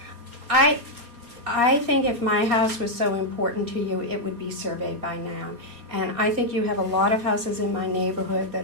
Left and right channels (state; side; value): late; left; 4.3 ms